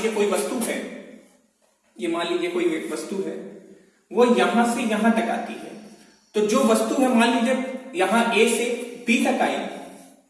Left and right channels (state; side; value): identical; both; correlation 1.00